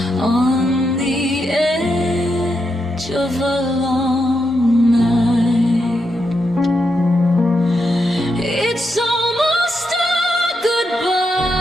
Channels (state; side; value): normal; both; correlation 0.83